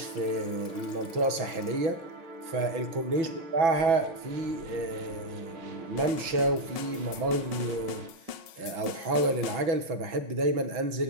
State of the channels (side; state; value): left; late; 6.1 ms